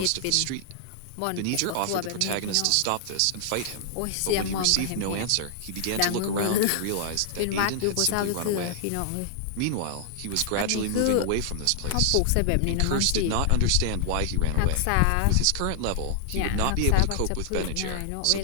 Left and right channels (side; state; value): both; different; correlation -0.01